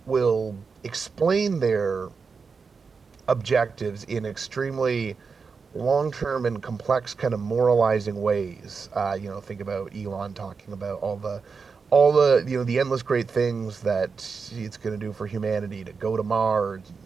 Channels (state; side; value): quieter; left; 5.1 dB